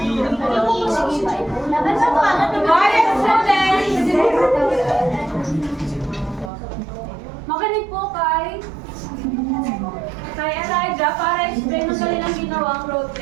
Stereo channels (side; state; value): left; drops out; at 6.5 s